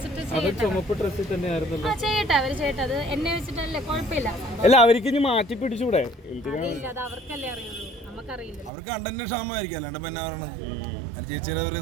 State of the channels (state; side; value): drops out; left; at 8.7 s